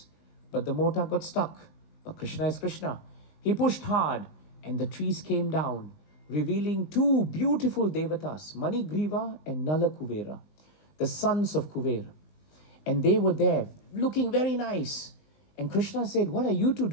but the mota got stuck. But Krishna is Krishna. He pushed hard and the trees came down, revealing 2 beautiful devatas, Manigriva and Nala Kuvera, the sons of Kuvera. And they were there looking very nice. And Krishna said, what are you 2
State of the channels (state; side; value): late; right; 20 ms